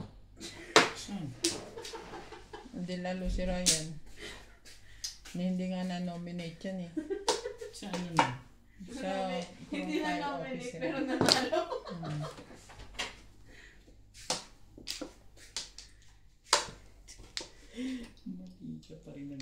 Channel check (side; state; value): both; identical; correlation 1.00